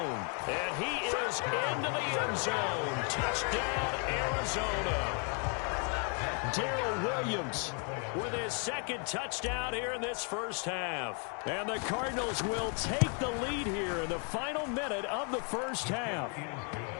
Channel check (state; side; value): quieter; right; 39.4 dB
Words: And he is into the end zone. Touchdown, Arizona. Darrell Williams with his 2nd touchdown here in this first half. And the Cardinals will take the lead here in the final minute of the first half.